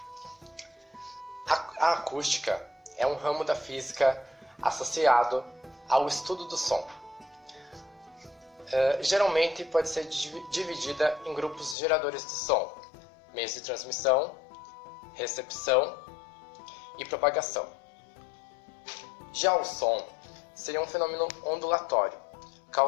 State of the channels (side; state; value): right; drops out; at 11.8 s